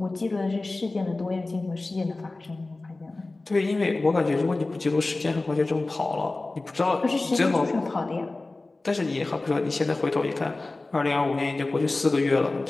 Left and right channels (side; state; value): right; quieter; 3.2 dB